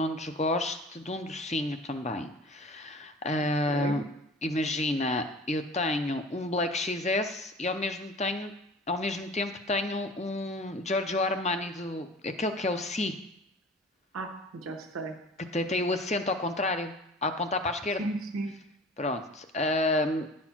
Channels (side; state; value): both; normal; correlation 0.42